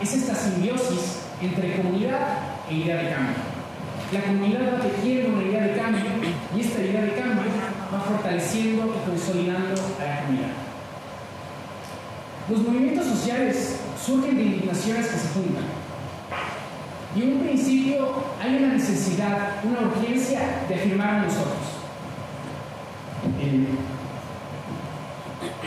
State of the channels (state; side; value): identical; both; correlation 1.00